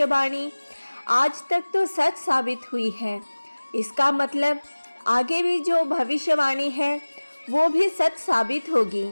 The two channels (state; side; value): inverted; both; correlation -1.00